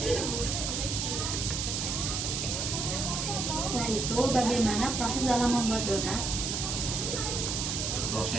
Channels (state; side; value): noise; right; hiss, 1 dB below the sound